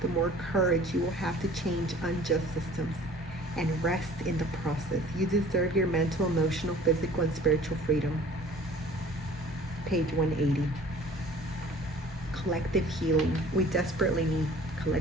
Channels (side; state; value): both; normal; correlation 0.49